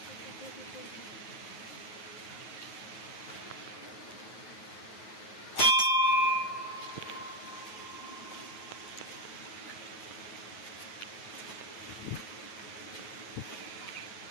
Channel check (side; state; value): right; late; 9.3 ms